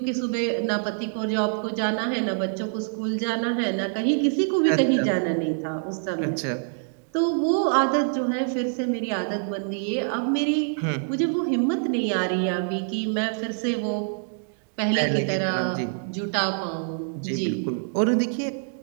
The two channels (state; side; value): silent; left; digital silence